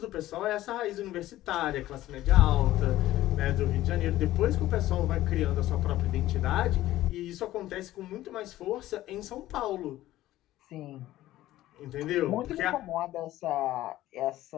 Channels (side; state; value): right; quieter; 15.0 dB